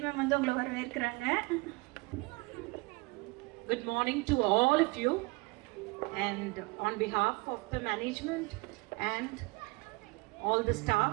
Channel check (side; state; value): left; quieter; 25.9 dB